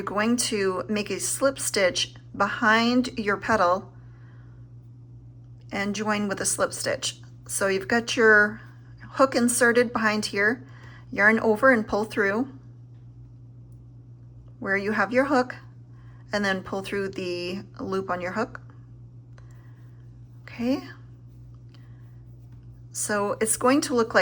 going to make a slip stitch behind your petal and join with a slip stitch. So you've got your hook inserted behind here, yarn over and pull through where you have your hook, and then pull through the loop on your hook. Okay. So it's going to look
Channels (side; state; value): both; identical; correlation 1.00